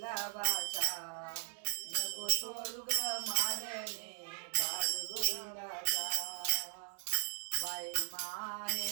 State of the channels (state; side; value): silent; left; digital silence